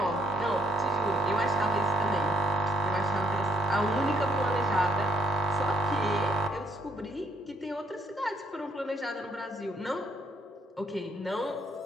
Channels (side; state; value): both; normal; correlation 0.67